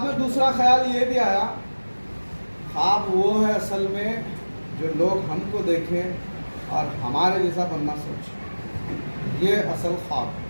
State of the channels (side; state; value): both; inverted; correlation -1.00